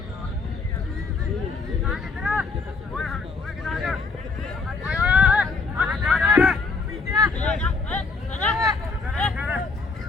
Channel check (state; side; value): quieter; right; 4.3 dB